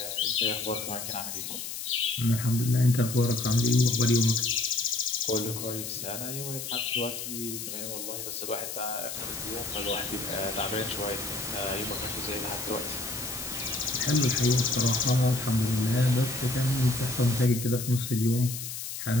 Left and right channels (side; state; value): left; noise; hiss, 7 dB below the sound